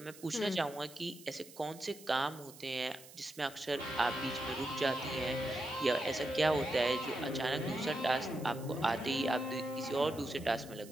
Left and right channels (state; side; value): noise; right; hiss, 19 dB below the sound